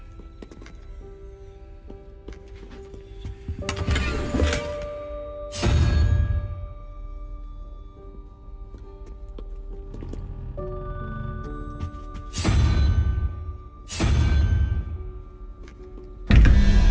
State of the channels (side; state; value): both; identical; correlation 1.00